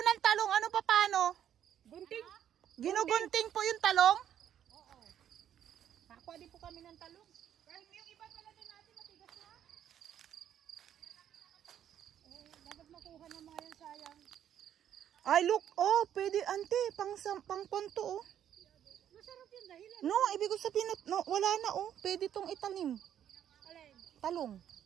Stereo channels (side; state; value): left; quieter; 10.1 dB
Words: talong, ano pa paano? Gunting? Ginugunting po yung talong? Oo. Nakuha din po kami ng talong. Kahit yung iba pala din natin matigas na. Dapat makuha na mga yan, sayang. Ay, look. Oh, pwede, ante. Pang ponto, oh. Masarap yun dahilan. No, ibig ko sabihin, no, wala na, oh. Pwede tong itanim. Alin? Talong.